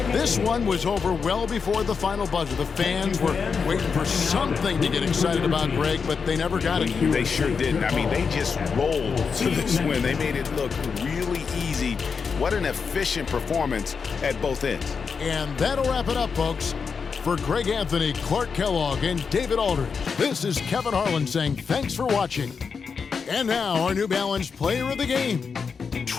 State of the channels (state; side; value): quieter; right; 5.6 dB